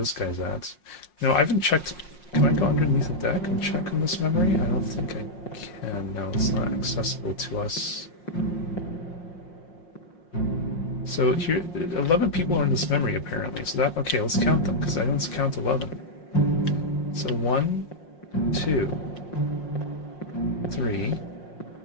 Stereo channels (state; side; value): late; right; 5.6 ms